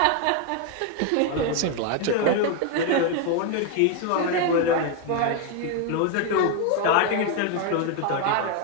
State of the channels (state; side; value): different; both; correlation 0.01